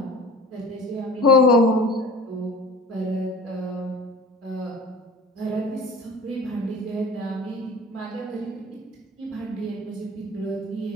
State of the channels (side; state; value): both; normal; correlation 0.42